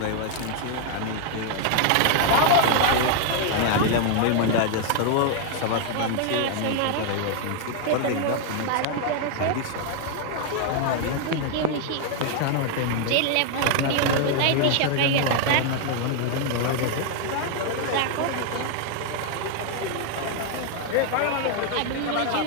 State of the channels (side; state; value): both; different; correlation 0.00